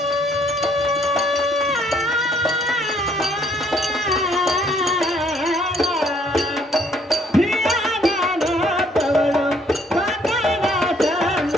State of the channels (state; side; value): normal; both; correlation 0.65